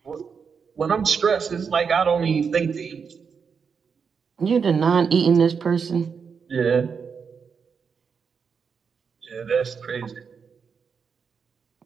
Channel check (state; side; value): quieter; left; 6.1 dB